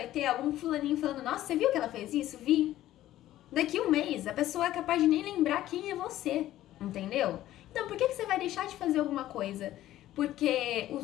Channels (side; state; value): right; quieter; 14.0 dB